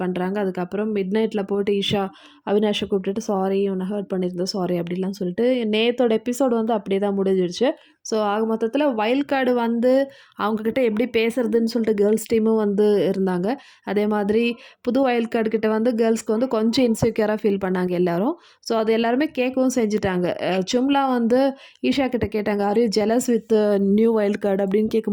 பண்ணுறாங்க. அதுக்கப்புறம் மிட் நைட்டில் போட்டு ஈஷா அவினாஷை கூப்பிட்டுட்டு சாரி உன்னை ஹர்ட் பண்ணியிருந்தோம் சாரி அப்படிலாம் சொல்லிட்டு நேத்தோட எபிசோடு வந்து அப்படியே தான் முடிஞ்சிடுச்சு. ஸோ ஆக மொத்தத்தில் வைல்ட் கார்டு வந்து அவங்கக்கிட்ட எப்படி பேசுறதுன்னு சொல்லிட்டு கேர்ள்ஸ் டீமும் வந்து இருந்தாங்க. அதே மாதிரி புது வைல்ட் கார்டு கிட்ட வந்து கேர்ள்ஸ்க்கு வந்து கொஞ்சம் இன்செக்யூராக ஃபீல் பண்ணாங்க எல்லாரும். ஸோ அது எல்லாருமே கேட்கவும் செஞ்சுட்டாங்க. சும்லா வந்து ஈஷா கிட்ட கேட்டாங்க, are you jealous with new wild card அப்படின்னு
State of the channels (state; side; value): identical; both; correlation 1.00